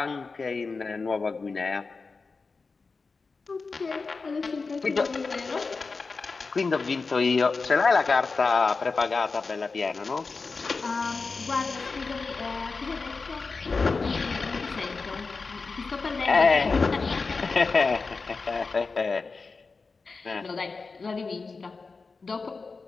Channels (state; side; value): quieter; right; 4.3 dB